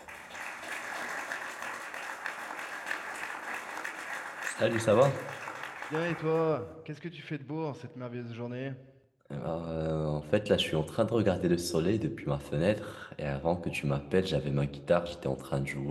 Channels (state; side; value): identical; both; correlation 1.00